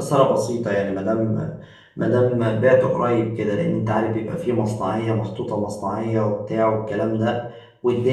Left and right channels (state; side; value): identical; both; correlation 1.00